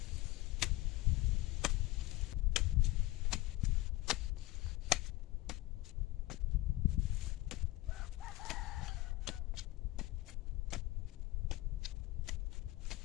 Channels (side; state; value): right; quieter; 18.6 dB